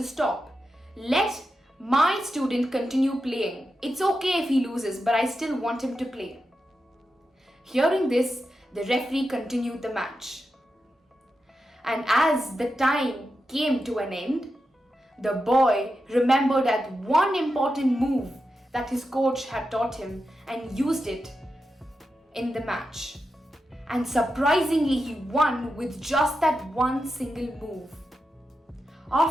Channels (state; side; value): normal; both; correlation 0.89